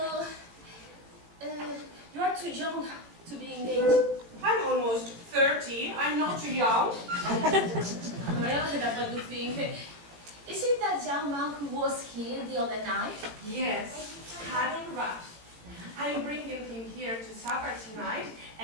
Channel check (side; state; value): left; late; 18 ms